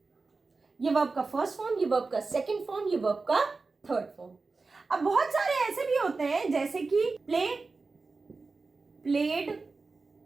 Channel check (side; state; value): left; quieter; 4.0 dB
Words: ये वर्ब का फर्स्ट फॉर्म, ये वर्ब का सेकंड फॉर्म, ये वर्ब का थर्ड फॉर्म। अब बहुत सारे ऐसे भी होते हैं जैसे कि प्ले, प्लेड,